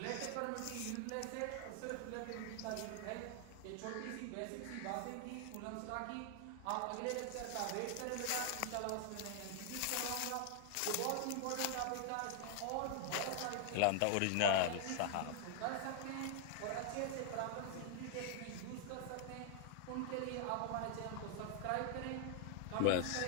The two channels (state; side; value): different; both; correlation 0.00